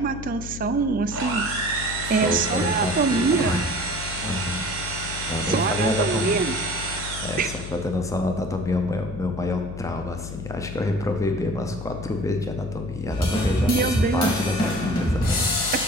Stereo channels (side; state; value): left; noise; hum, 9 dB below the sound